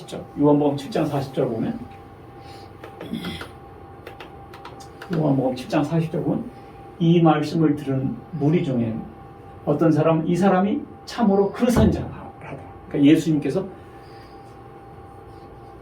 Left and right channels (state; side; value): identical; both; correlation 1.00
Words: 요한복음 7장 40절 보면 요한복음 7장 40절 보면 이 말씀을 들은 무리 중에 어떤 사람은 이 사람이 참으로 그 선지자다. 그러니까 예수님께서